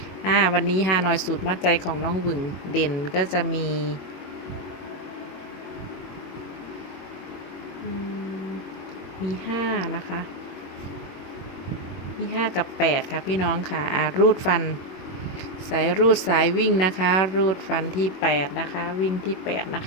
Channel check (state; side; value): late; right; 22 ms